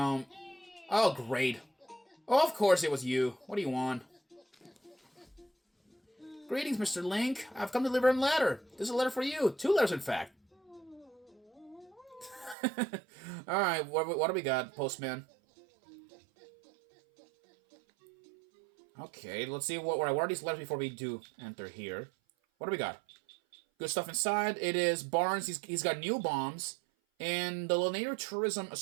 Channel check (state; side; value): drops out; left; at 12.6 s